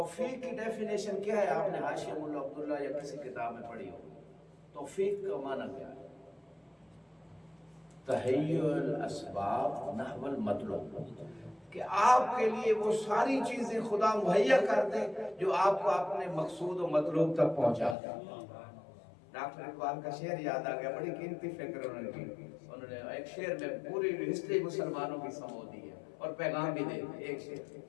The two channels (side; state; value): right; drops out; at 17.9 s